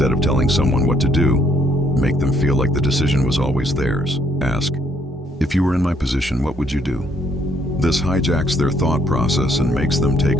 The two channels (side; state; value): both; normal; correlation 0.69